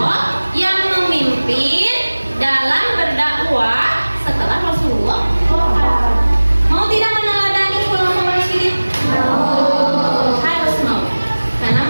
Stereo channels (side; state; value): both; inverted; correlation -1.00